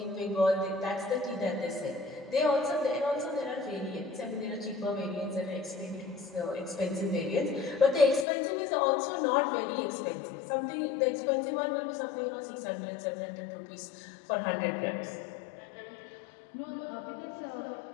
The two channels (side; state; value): right; drops out; at 8.2 s